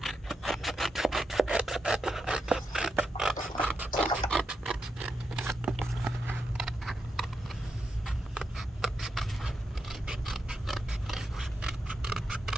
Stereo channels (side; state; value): both; normal; correlation 0.85